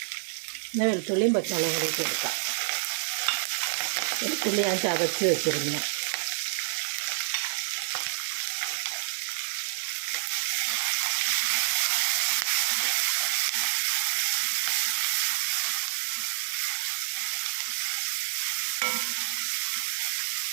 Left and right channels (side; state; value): left; silent; digital silence